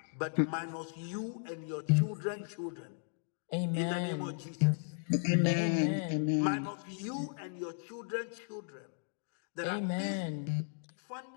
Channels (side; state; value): right; silent; digital silence